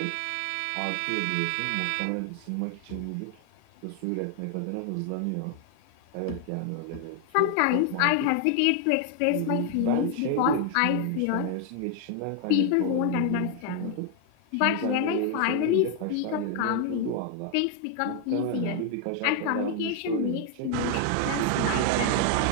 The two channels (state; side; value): different; both; correlation 0.00